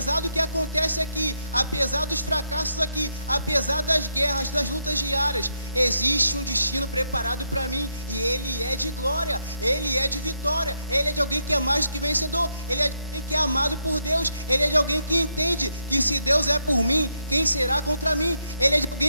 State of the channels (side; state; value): both; inverted; correlation -0.78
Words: do que acontece aqui, apesar dos fracassos aqui, apesar das guerras, das lutas diárias, existe um destino preparado para mim e ele é de glória, ele é de vitória, ele é de alguém que é mais do que vencedor, ele é de alguém que é amado por Deus, ele é de alguém que entende que se Deus é por mim, quem será contra mim? Ele é de